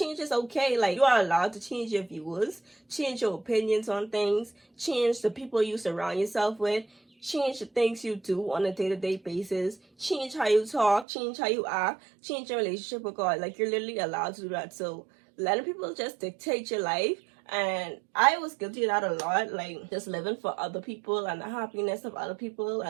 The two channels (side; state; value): left; drops out; at 11.1 s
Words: is okay. Like, you are allowed to change your views, change your opinions on things, change the people you surround yourself with, change the things you do on a day-to-day basis, change how you talk, change how you act, change your relationship with God. Like, you're literally allowed to do that. So letting people just dictate your life, and I was guilty of that a lot, like just living for other people and the happiness of other people